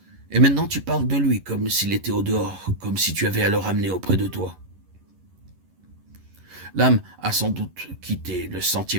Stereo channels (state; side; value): late; left; 11 ms